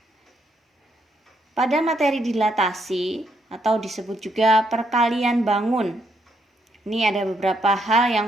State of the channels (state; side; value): normal; both; correlation 0.75